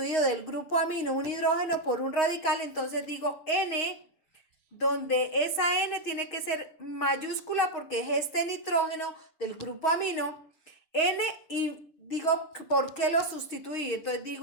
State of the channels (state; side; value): late; right; 6.4 ms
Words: del grupo amino un hidrógeno por un radical, entonces digo N, donde esa N tiene que ser mayúscula porque es este nitrógeno del grupo amino, N, y digo por qué lo sustituí, entonces